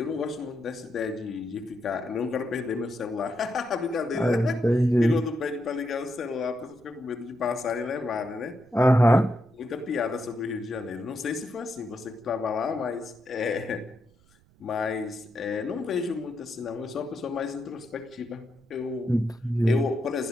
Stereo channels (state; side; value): noise; right; rumble, 30 dB below the sound